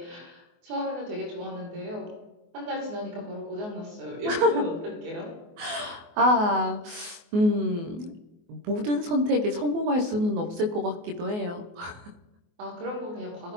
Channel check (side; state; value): left; late; 24 ms